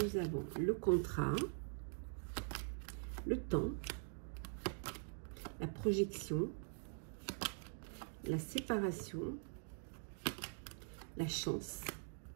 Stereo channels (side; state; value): left; silent; digital silence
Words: nous avons le contrat, le temps, la projection, la séparation, la chance